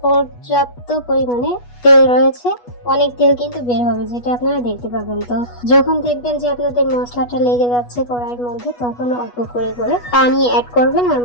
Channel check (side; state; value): right; late; 8.2 ms